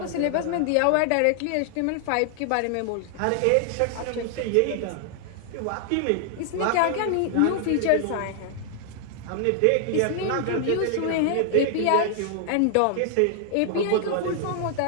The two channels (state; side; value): different; both; correlation 0.00